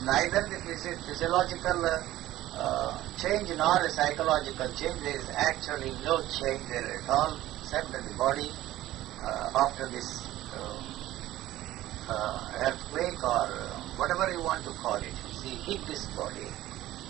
neither the physiological change nor a psychological change. There is actually no change there at all, except that the body after this earthquake or whatever you want to call it, see, hit this body.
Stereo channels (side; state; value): left; quieter; 15.1 dB